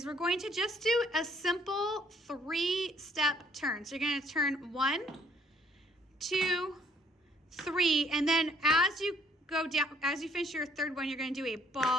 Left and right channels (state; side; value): normal; both; correlation 0.64